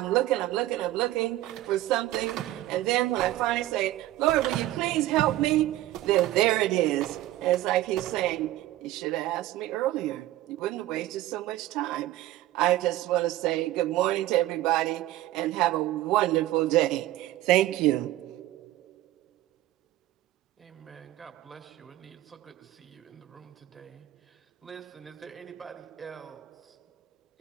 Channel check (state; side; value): quieter; left; 15.2 dB